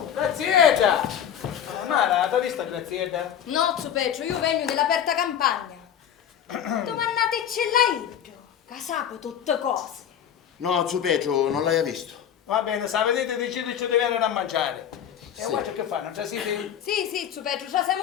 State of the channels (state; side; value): quieter; right; 9.3 dB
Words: Mara, dove sta Grazietta? No, Zupeggio, io vengo dell'aperta campagna. Domandate ce l'hai io, che sapo tutte cose. No, Zupeggio, non l'hai visto. Va bene, se vedete decidete di venire a mangiare. E voi che fanno? Non ci siete? Sì, Zupeggio, già